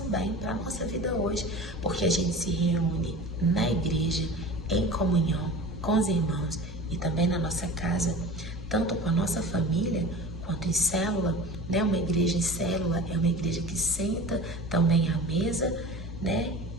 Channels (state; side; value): normal; both; correlation 0.37